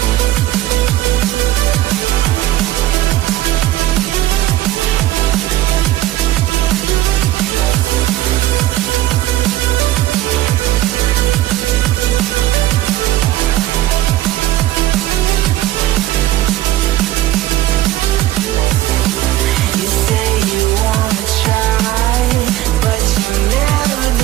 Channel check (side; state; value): left; quieter; 15.1 dB